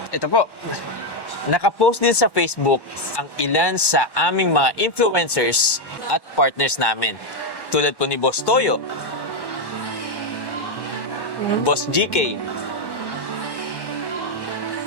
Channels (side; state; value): right; late; 1.1 ms